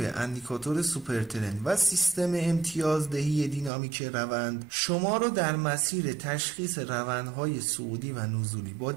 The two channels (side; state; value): left; drops out; at 3.7 s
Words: اندیکاتور سوپرترند و سیستم امتیازدهی دینامیک روند شما رو در مسیر تشخیص روندهای صعودی و نزولی با